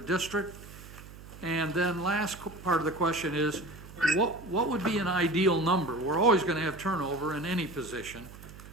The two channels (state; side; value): noise; right; hum, 17 dB below the sound